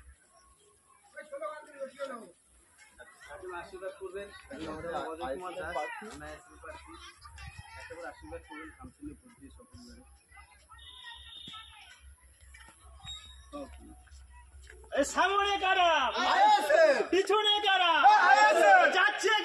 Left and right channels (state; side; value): identical; both; correlation 1.00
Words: আশীর্বাদ করবেন আশীর্বাদ করবেন কাউন্সিলে বুদ্ধি সফল সামনে কারা পিছনে কারা যাচ্ছে